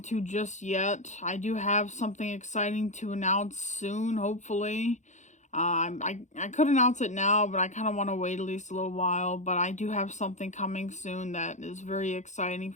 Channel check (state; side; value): late; right; 0.35 ms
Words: just yet. I do have something exciting to announce soon, hopefully. I could announce it now, but I kind of want to wait at least a little while. But I do have something coming soon that is very exciting